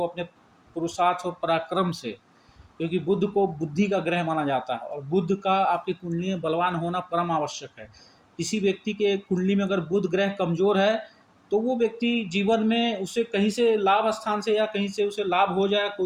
अपने पुरुषार्थ और पराक्रम से, क्योंकि बुध को बुद्धि का ग्रह माना जाता है और बुध का आपकी कुंडली में बलवान होना परम आवश्यक है। किसी व्यक्ति के कुंडली में अगर बुध ग्रह कमजोर है तो वो व्यक्ति जीवन में, उसे कहीं से लाभ स्थान से या कहीं से उसे लाभ हो जाए,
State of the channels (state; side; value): identical; both; correlation 1.00